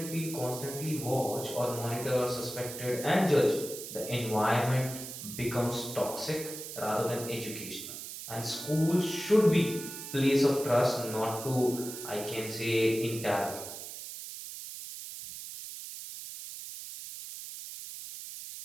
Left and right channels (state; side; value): noise; right; hiss, 10 dB below the sound